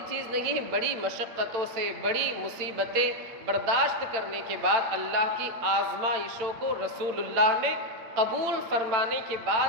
چیز نہیں ہے۔ بڑی مشقتوں سے، بڑی مصیبتیں برداشت کرنے کے بعد اللہ کی آزمائشوں کو رسول اللہ نے قبول فرمانے کے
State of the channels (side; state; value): left; late; 8.7 ms